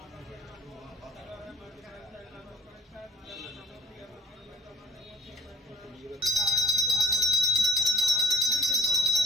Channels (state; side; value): normal; both; correlation 0.56